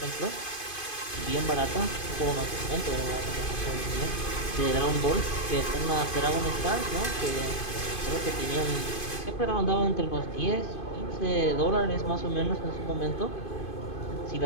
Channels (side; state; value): right; late; 2.5 ms